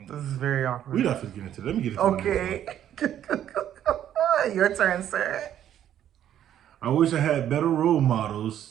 This is very awkward. We're not going to get into it. Let me get into it. Okay. Your turn, sir. I wish I had better role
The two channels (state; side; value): quieter; left; 10.8 dB